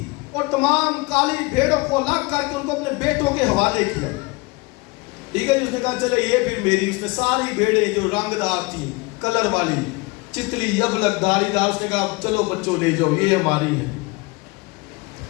और तमाम काली भेड़ों को अलग करके उनको अपने बेटों के हवाले किया। ठीक है जी। उसने कहा चले ये फिर मेरी। उसने सारी भेड़ें जो रंगदार थी, कलर वाली, चितली, अबलक, धारीदार, उसने कहा चलो बच्चों ले जाओ, ये हमारी है।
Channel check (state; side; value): quieter; right; 25.1 dB